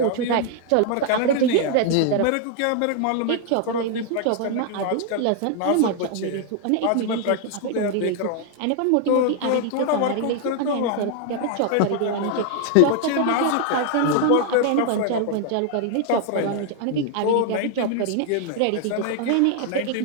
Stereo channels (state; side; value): different; both; correlation 0.00